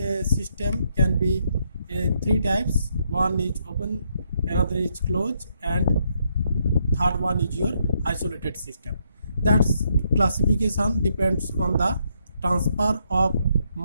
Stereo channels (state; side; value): inverted; both; correlation -0.75